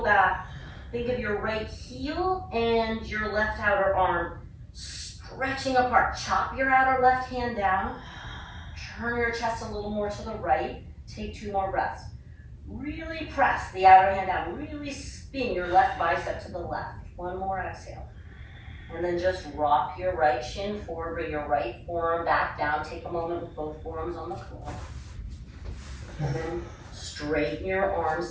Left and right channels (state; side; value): identical; both; correlation 1.00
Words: back, think of your right heel and your left outer arm stretching apart. Chop your outer left hand down. Turn your chest a little more to the right. Take 2 more breaths. Really press the outer hand down. Really spin your left bicep to the left. 1 more exhale. And then just rock your right shin forward, bring your right forearm back down. Take a moment with both forearms on the floor. And then straighten your arms,